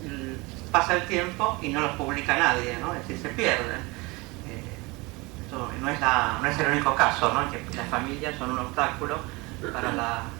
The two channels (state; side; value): quieter; left; 24.8 dB